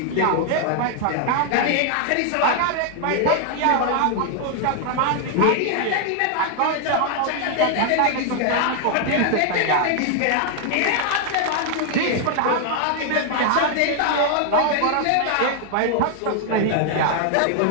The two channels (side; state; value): both; different; correlation 0.00